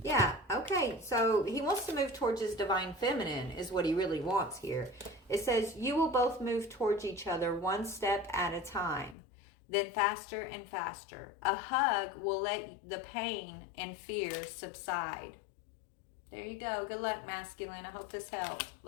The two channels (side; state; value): right; drops out; at 9.2 s